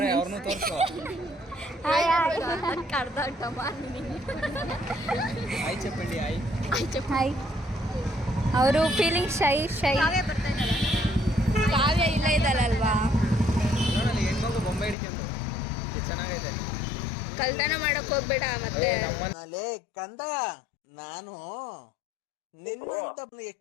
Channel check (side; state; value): right; drops out; at 15.0 s